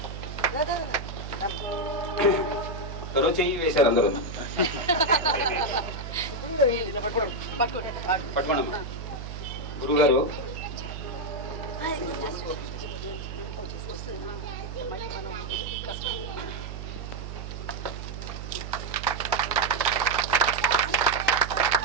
ఎవరో చెయ్యి వేశారు అందరూ. పట్టుకోండమ్మా. గురువు గారు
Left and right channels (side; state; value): right; noise; hum, 8 dB below the sound